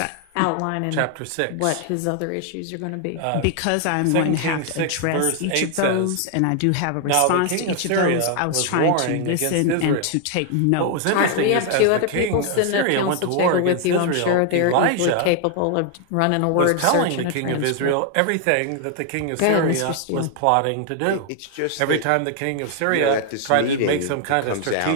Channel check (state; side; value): different; both; correlation 0.00